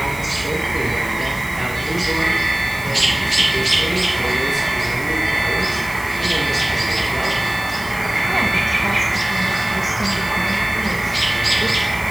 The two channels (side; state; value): right; noise; hiss, 18 dB below the sound